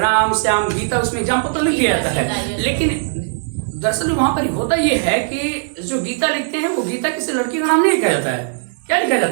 श्याम गीता, उसमें एग्जाम्पल तो लिख दिया जाता है, लेकिन दरअसल वहां पर होता ये है कि जो गीता लिखते हैं वो गीता किसी लड़की का नाम नहीं लिखा जाता है। क्या लिखा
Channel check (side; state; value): left; silent; digital silence